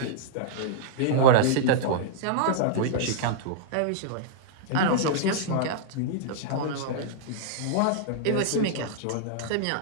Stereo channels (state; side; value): different; both; correlation -0.01